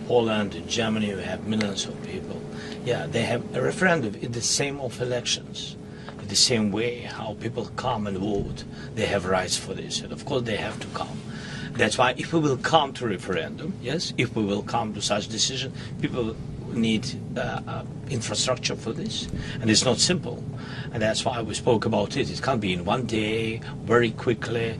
Poland, in Germany, we have millions of people. Yeah, they have a referendum in the same of elections. In the same way how people come and vote, they have rights for this. And of course they have to come. That's why if we will come to referendum, yes, if we will come to such decision, people need infrastructure for this. And it's not simple. And that's why we spoke about it. It can't be in one day, very quickly.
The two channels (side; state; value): both; identical; correlation 1.00